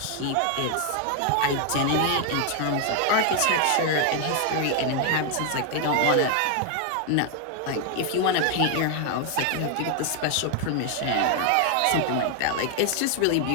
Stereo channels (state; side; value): different; both; correlation 0.00